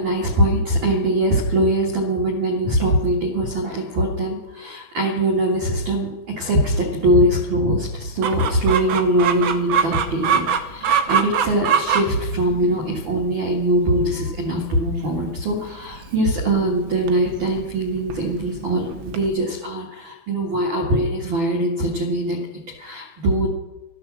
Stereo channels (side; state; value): left; late; 6.0 ms